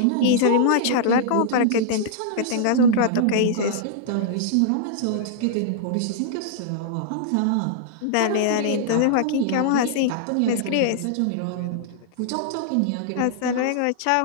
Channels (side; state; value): both; different; correlation -0.01